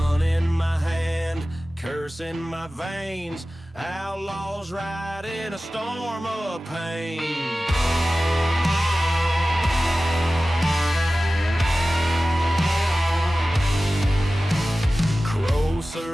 in my hand, curse in my veins. Outlaws ride in a storm of pain.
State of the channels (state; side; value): normal; both; correlation 0.96